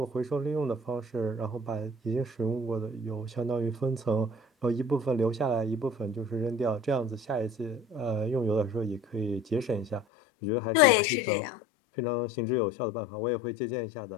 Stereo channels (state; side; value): drops out; right; at 10.1 s